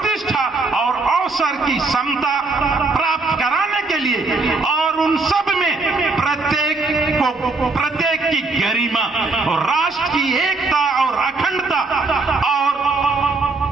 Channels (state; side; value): quieter; left; 3.7 dB